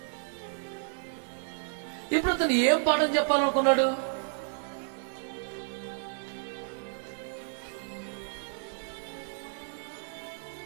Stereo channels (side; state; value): left; silent; 57 dB below the other